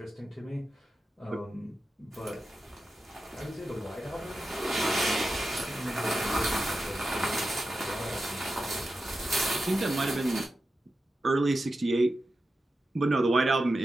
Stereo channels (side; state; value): both; normal; correlation 0.91